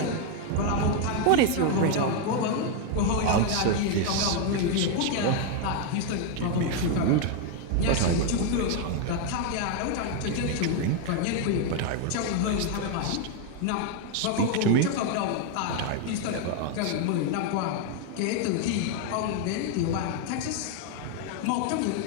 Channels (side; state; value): both; different; correlation 0.01